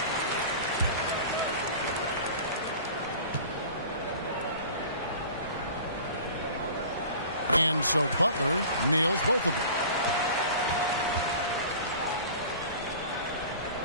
And so Butler nails both of them.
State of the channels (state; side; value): inverted; both; correlation -0.41